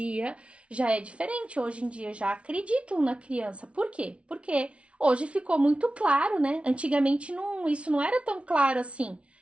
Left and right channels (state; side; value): late; left; 0.061 ms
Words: já é diferente. Hoje em dia já acreditam na criança. Por quê? Porque hoje ficou muito claro, né? Antigamente isso não era tão claro assim.